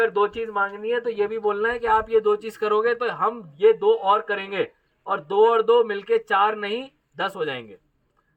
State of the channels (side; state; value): both; identical; correlation 1.00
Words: 2 चीज मांगनी है तो ये भी बोलना है कि आप ये 2 चीज करोगे तो हम ये 2 और करेंगे, और 2 और 2 मिलके 4 नहीं 10 हो जाएंगे।